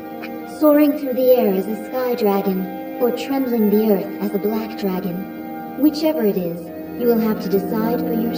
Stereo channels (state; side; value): identical; both; correlation 1.00